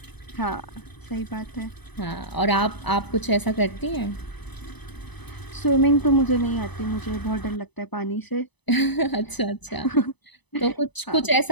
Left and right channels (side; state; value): right; late; 0.99 ms